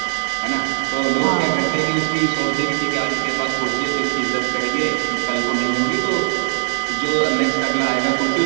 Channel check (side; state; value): left; silent; digital silence